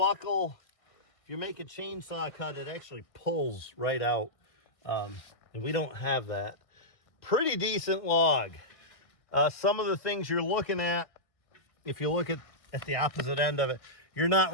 if you make a chainsaw cut, it actually pulls right out. And we don't have that. Pretty decent log. Some of the things you're looking at, if you look at the opposite end of it, you're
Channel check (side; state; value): right; late; 1.6 ms